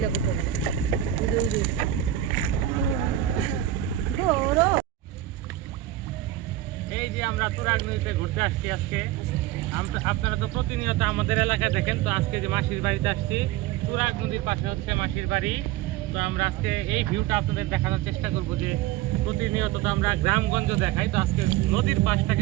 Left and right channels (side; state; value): left; quieter; 13.2 dB